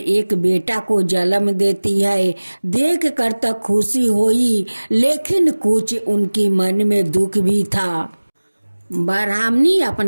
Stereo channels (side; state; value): both; inverted; correlation -1.00